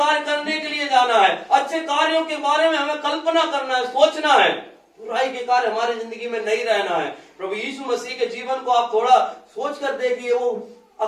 करने के लिए जाना है, अच्छे कार्यों के बारे में हमें कल्पना करना है, सोचना है। बुराई के कार्य हमारी जिंदगी में नहीं रहना है। प्रभु यीशु मसीह के जीवन को आप थोड़ा सोच कर देखिए, वो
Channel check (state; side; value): identical; both; correlation 1.00